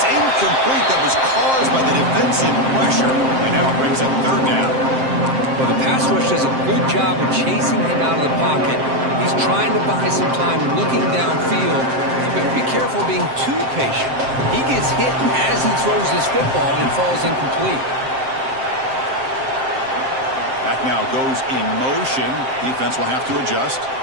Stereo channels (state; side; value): late; left; 7.6 ms